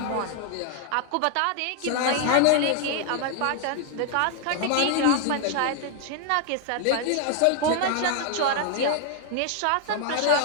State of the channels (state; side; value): different; both; correlation 0.00